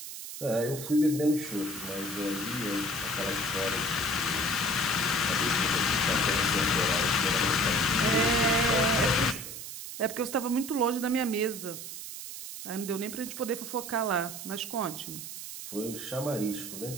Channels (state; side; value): noise; right; hiss, 9 dB below the sound